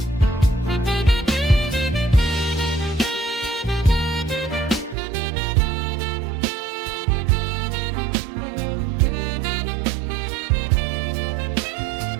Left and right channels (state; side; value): drops out; left; at 5.0 s